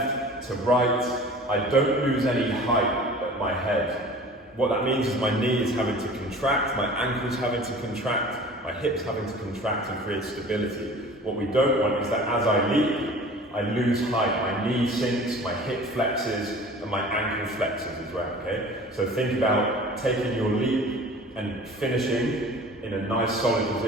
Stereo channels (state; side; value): normal; both; correlation 0.43